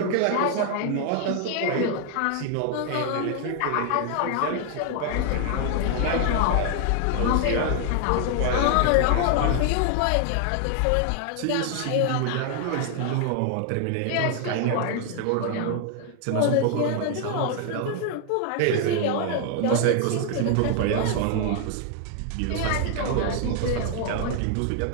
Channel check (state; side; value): different; both; correlation 0.00